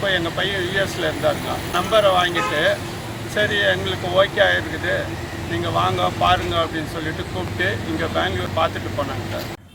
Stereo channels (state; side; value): identical; both; correlation 1.00